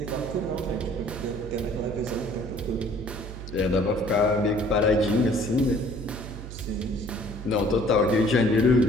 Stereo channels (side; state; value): right; noise; hum, 10 dB below the sound